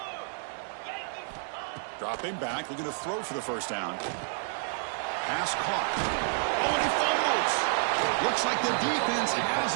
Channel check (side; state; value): left; silent; 58 dB below the other